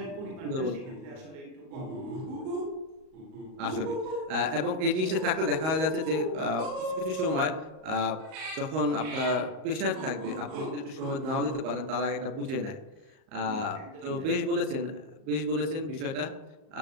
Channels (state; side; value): late; left; 38 ms